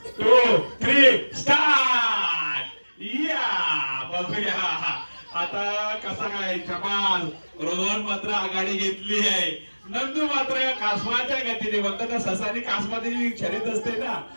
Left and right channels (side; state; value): both; inverted; correlation -1.00